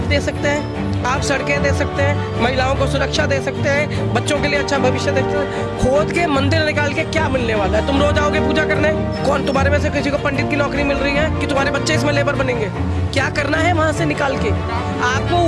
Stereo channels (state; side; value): identical; both; correlation 1.00